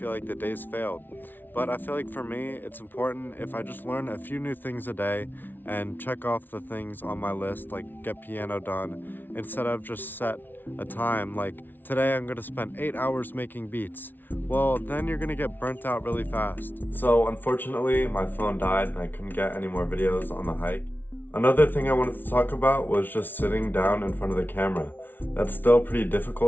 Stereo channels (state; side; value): late; right; 0.091 ms